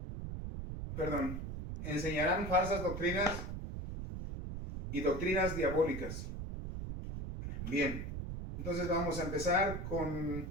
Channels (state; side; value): noise; right; rumble, 6 dB below the sound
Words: perdón, enseñarán falsas doctrinas y doctrinas diabólicas. Bien, entonces vamos a empezar con